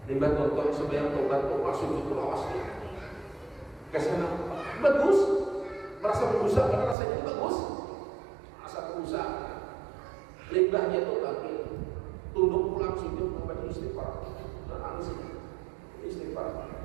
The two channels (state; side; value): drops out; left; at 7.0 s